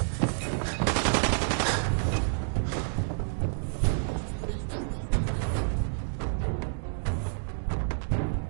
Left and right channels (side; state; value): left; silent; digital silence